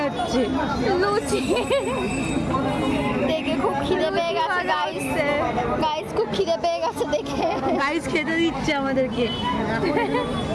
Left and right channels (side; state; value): both; identical; correlation 1.00